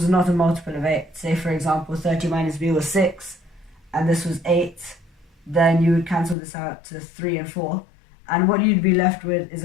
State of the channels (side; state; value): right; drops out; at 6.4 s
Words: not a multiple of 8, say for example 30 minus B was 6 and this was 8, then you would cancel this out to 3 and 4, and what you'd be left with is